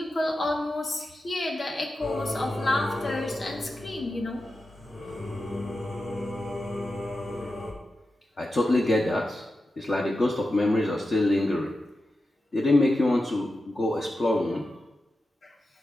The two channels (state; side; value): normal; both; correlation 0.91